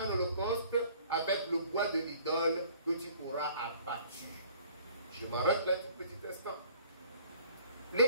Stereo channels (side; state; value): both; inverted; correlation -0.53